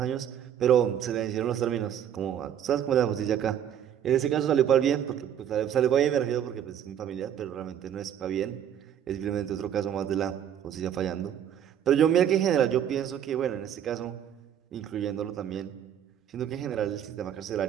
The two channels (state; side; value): quieter; left; 9.7 dB